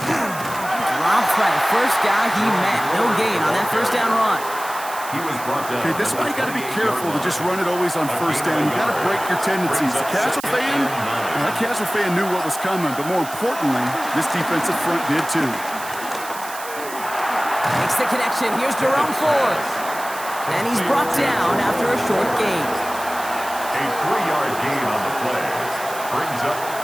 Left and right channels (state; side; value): noise; right; hiss, 13 dB below the sound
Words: by the first guy he met. No gain on that first down run. He was brought down. Okay, this is why you got to be careful to just run it always on first down. You got to break your tendencies. The casual fan, that casual fan knew what was coming, but more importantly, this defensive front did too. Makes the connection. Here's Jerome Ford. And he's brought down after a short gain. A 3-yard gain on the play. Brings up